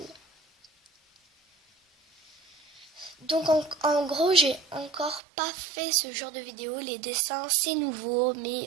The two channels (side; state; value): left; drops out; at 5.2 s